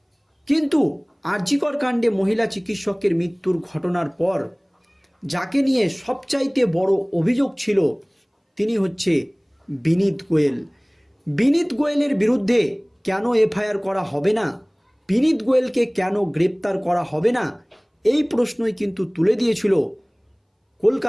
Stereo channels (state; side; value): identical; both; correlation 1.00